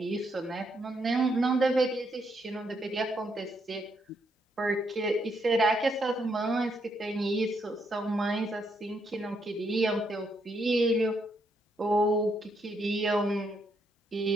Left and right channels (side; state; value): both; normal; correlation 0.76